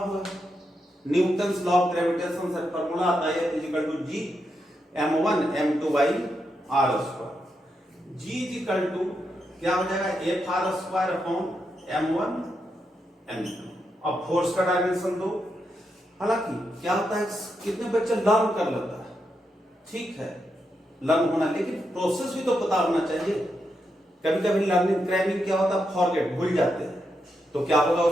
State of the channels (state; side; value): normal; both; correlation 0.84